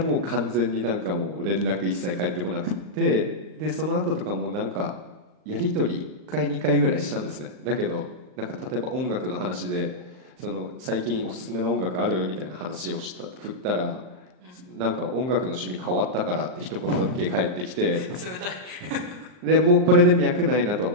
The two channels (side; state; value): left; late; 39 ms